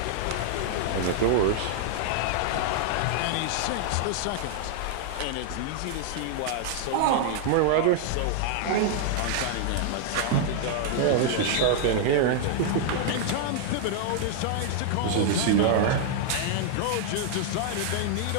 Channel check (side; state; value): both; different; correlation -0.01